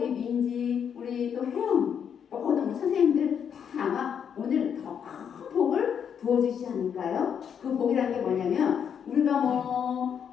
민지 우리 또 혜영 모든 선생님들 다 아마 오늘 더 큰 복을 부어주시지 않을까요? 그 복이라는 게 뭐냐면 우리가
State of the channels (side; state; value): right; quieter; 7.9 dB